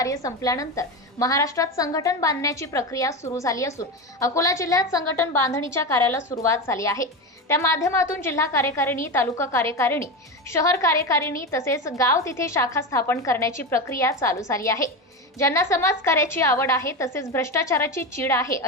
संपल्यानंतर महाराष्ट्रात संघटन बांधण्याची प्रक्रिया सुरू झाली असून अकोला जिल्ह्यात संघटन बांधणीच्या कार्याला सुरुवात झाली आहे। त्या माध्यमातून जिल्हा कार्यकारिणी, तालुका कार्यकारिणी, शहर कार्यकारिणी तसेच गाव तिथे शाखा स्थापन करण्याची प्रक्रिया चालू झाली आहे। ज्यांना समाज कार्याची आवड आहे तसेच भ्रष्टाचाराची चीड आहे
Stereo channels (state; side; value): normal; both; correlation 0.19